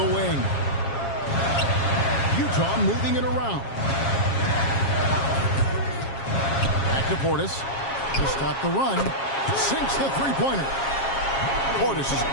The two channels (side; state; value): right; late; 7.4 ms